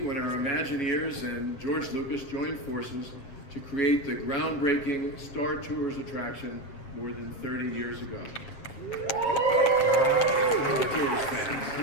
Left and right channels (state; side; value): late; right; 7.8 ms